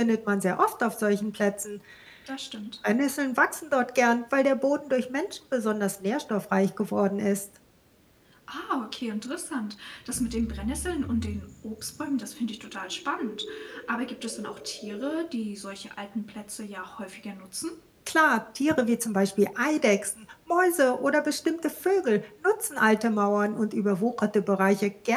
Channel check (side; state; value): both; identical; correlation 1.00